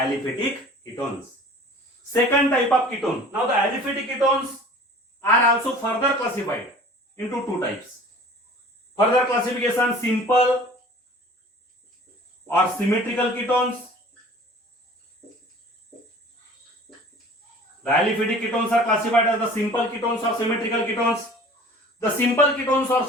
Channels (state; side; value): normal; both; correlation 0.45